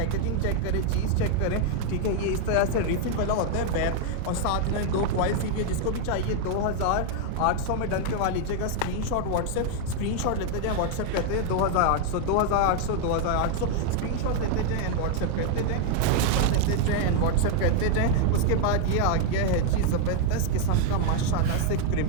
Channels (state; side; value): different; both; correlation 0.00